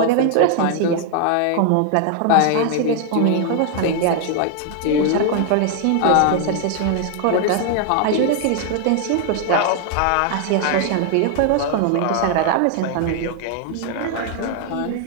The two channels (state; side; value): different; both; correlation 0.00